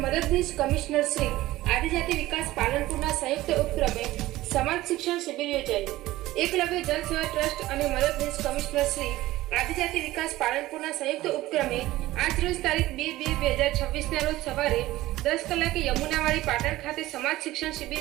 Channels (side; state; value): left; quieter; 16.8 dB